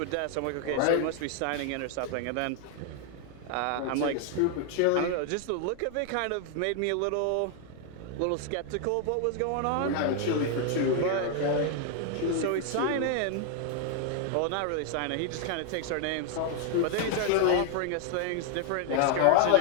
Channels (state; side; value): different; both; correlation 0.00